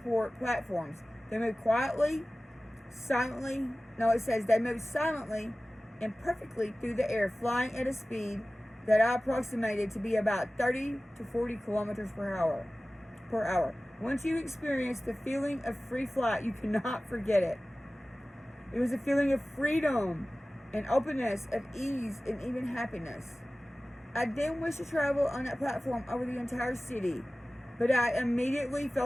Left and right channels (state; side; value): normal; both; correlation 0.97